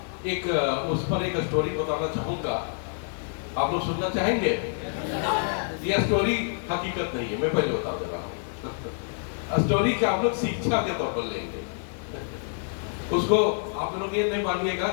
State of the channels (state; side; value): silent; right; digital silence